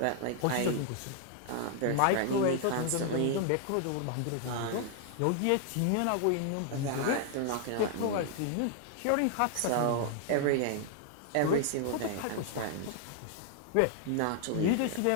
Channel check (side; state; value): both; different; correlation 0.00